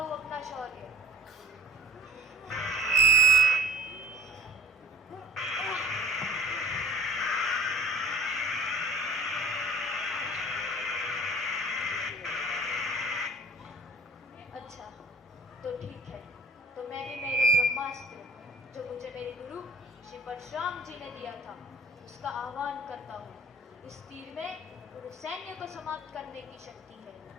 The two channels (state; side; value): normal; both; correlation 0.46